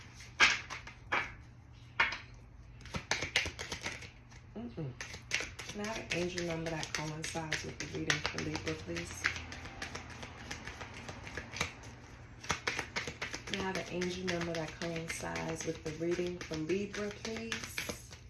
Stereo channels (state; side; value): identical; both; correlation 1.00